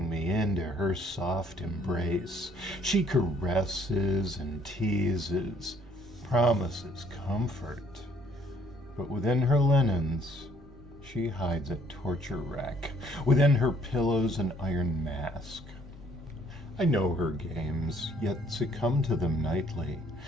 me into her soft embrace. She caresses and teases, promises comfort. But within her linens, she hides a torture rack. Within her pillows, an iron mask. I know her games, yet succumb to them nightly,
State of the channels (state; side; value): normal; both; correlation 0.63